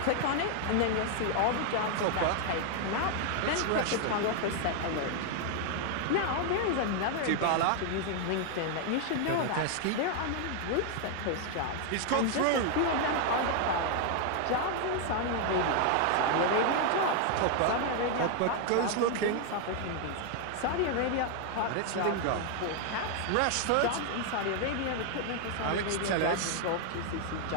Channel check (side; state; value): both; different; correlation 0.00